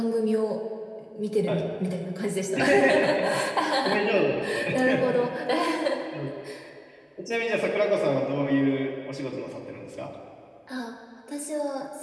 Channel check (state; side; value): identical; both; correlation 1.00